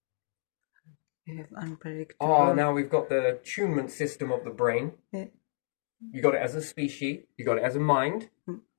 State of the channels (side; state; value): right; silent; digital silence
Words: You have unpredictable. Oh, now we've got the tunement system of the brain. Yeah. You got it as a species. You got it as a mind.